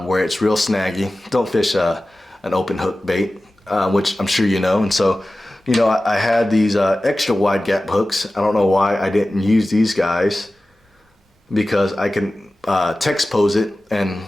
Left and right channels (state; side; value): normal; both; correlation 0.96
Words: where it's real snaggy, don't fish an open hook bait, which I'm sure you know. And so, I had these extra wide gap hooks. I don't know why I didn't use these guys, because I can text pose it and